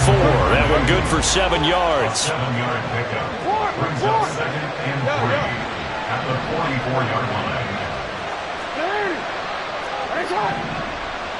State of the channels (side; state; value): both; identical; correlation 1.00